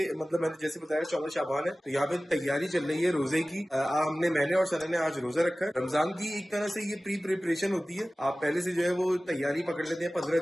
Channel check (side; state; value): both; normal; correlation 0.97